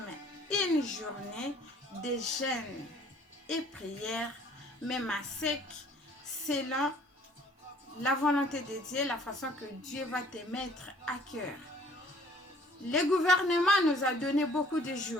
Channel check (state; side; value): normal; both; correlation 0.56